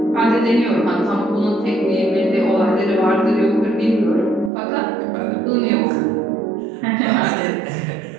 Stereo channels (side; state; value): left; drops out; at 4.5 s